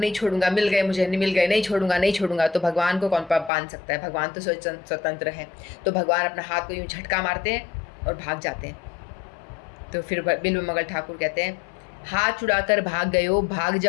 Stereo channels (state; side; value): drops out; right; at 3.5 s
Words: छोड़ूंगा, मिल गए मुझे, मिल गए, नहीं छोड़ूंगा नहीं छोड़ूंगा। तो भगवान को कौन बांध सकता है, भगवान तो स्वतंत्र है। तो भगवान अपना हाथ को यूँ झटका मारते हैं और भाग जाते हैं। तो फिर बिल्व मंगल ठाकुर कहते हैं, हाथ छुड़ाकर भाग गए हो, भाग